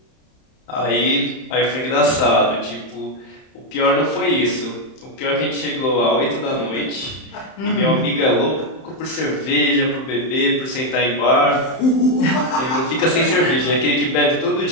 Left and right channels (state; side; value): late; right; 31 ms